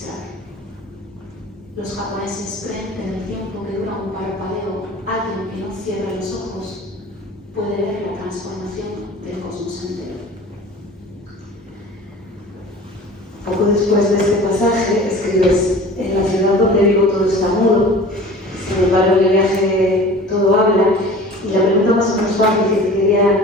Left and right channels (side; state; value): both; normal; correlation 0.41